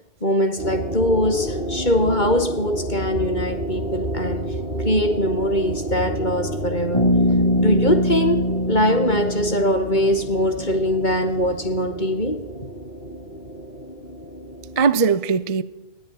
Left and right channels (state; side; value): late; right; 2.2 ms